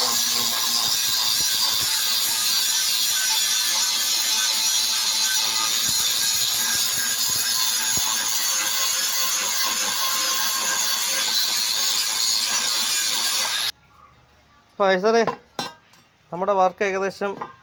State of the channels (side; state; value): both; identical; correlation 1.00